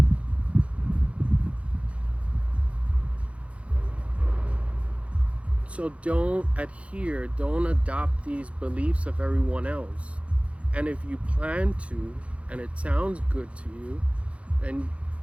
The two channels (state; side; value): late; left; 0.062 ms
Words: So don't adopt these beliefs of everyone else. And if you plan to, and it sounds good to you, then